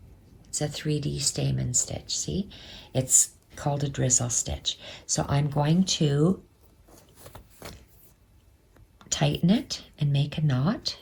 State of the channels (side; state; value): both; identical; correlation 1.00